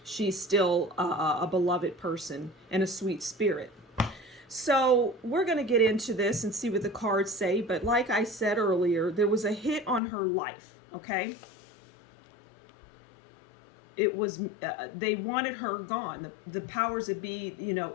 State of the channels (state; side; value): drops out; right; at 10.0 s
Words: she's still a beloved person and a sweet spirit. So we're going to get into this and see what the cards say. But like I said earlier, there was a hit on her life, okay? It was, they wanted her gone. The powers that be,